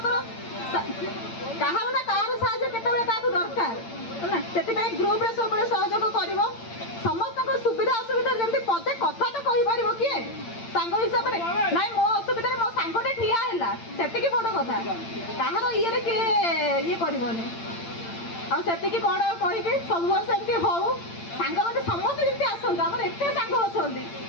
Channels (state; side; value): late; right; 8.8 ms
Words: କାହାର ନା କାହାର ସାହାଯ୍ୟ କେତେବେଳେ କାହାକୁ ଦରକାର ହେଲା ସେଥିପାଇଁ ଗ୍ରୁପରେ ସବୁବେଳେ ସହଯୋଗ କରିବ ସମସ୍ତଙ୍କ ସୁବିଧା ଅସୁବିଧା ଯେମିତି ପଦେ କଥା ତ କହିପାରିବ କିଏ ସାଙ୍ଗ ହିସାବରେ ନାଇଁ ମୋ ଅସୁବିଧାରେ ମୋ ସାଙ୍ଗଟେ ଠିଆ ହେଲା ସେତିକି ବଡ଼ କଥା କାହାର ଇଏରେ କିଏ ଇଏ କରିବନି ଆଉ ସେତିକି କ'ଣ କହିବି ସବୁବେଳେ ସେମିତି ହଉ ସାଙ୍ଗମାନେ ସମସ୍ତେ ଯେମିତି ଆସନ୍ତୁ ଆମର ଏତେ ସାଙ୍ଗ ଅଛନ୍ତି